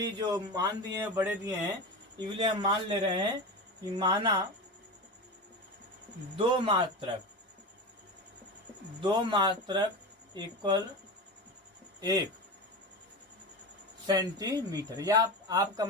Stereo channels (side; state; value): both; normal; correlation 0.24